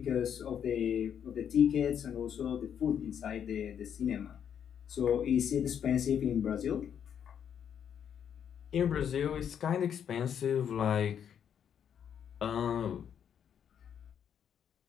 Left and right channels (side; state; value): right; quieter; 8.5 dB